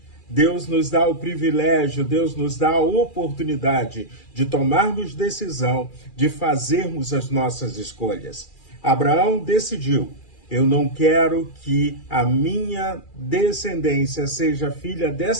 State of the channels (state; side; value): late; right; 2.4 ms